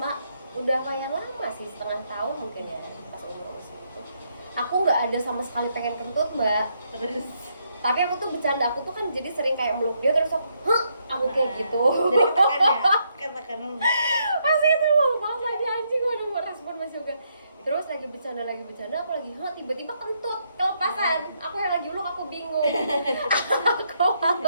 udah lumayan lama sih, setengah tahun mungkin ya pas umur segitu. Aku nggak ada sama sekali pengen kentut, Mbak. terus Tapi aku tuh bercanda, aku tuh kan jadi sering kayak meluk dia terus aku kayak gitu. jadi katakan Pasti itu malu banget lagi anjing, gue udah mau respon Mas Yoga. Terus lagi bercanda, aku lagi tiba-tiba kentut kelepasan. Aku yang lagi uluk, aku bingung. Aku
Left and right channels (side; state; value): both; inverted; correlation -0.76